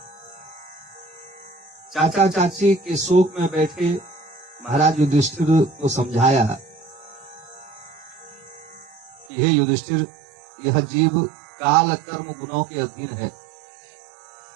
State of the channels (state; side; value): drops out; left; at 9.3 s